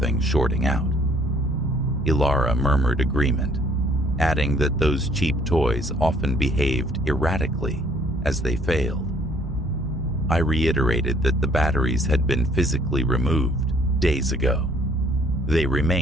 shorting out. Ilara murmured agreement, adding that those cheap toys often behaved erratically as they failed. I reiterated that the batteries had been physically removed days ago. They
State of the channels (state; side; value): normal; both; correlation 0.61